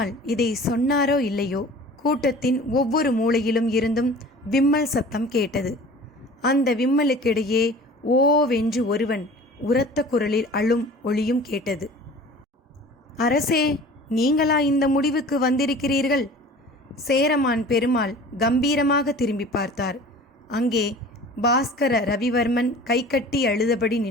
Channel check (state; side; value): normal; both; correlation 0.43